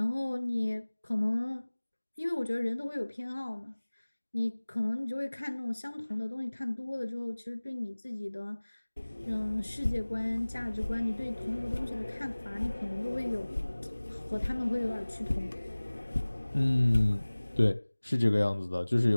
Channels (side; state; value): both; inverted; correlation -1.00